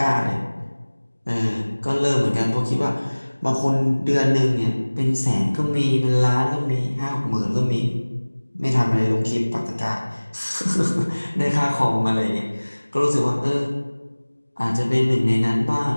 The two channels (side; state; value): both; inverted; correlation -1.00